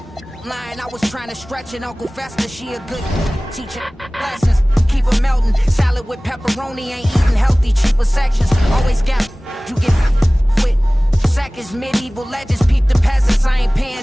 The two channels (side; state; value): both; normal; correlation 0.98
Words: Lying, I was trying to stretch it. Uncle Fester, she a good teacher. Lessons, keep her melting. Salad with pepperoni, ain't eating healthy. Cheaper sections, always got you get with seconds. Medieval legends, peep the peasants. I ain't